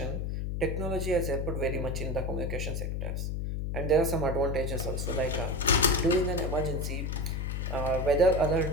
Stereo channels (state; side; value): noise; left; hum, 2 dB below the sound